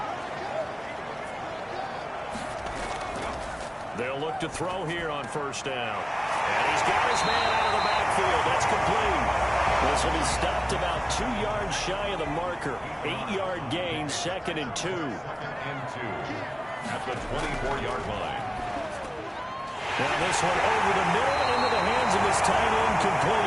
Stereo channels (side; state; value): both; identical; correlation 1.00